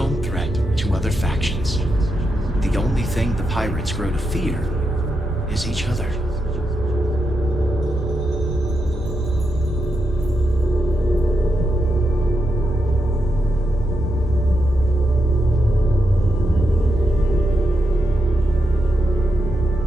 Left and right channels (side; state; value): left; noise; hum, 11 dB below the sound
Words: threat to other factions. The only thing the pirates grow to fear is each other.